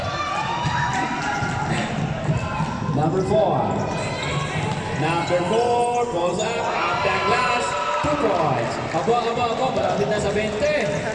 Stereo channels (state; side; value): identical; both; correlation 1.00